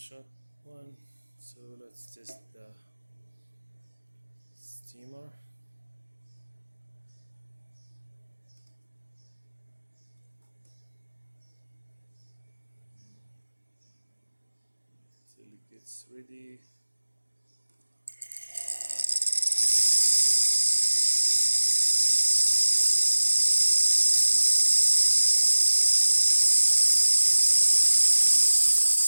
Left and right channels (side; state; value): both; inverted; correlation -1.00